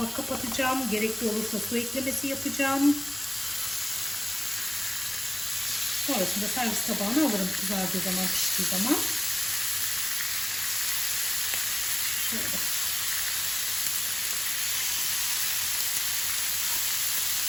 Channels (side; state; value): right; noise; rumble, 28 dB below the sound